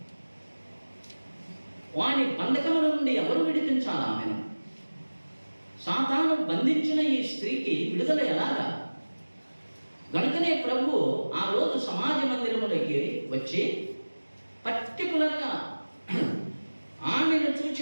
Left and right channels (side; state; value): both; inverted; correlation -1.00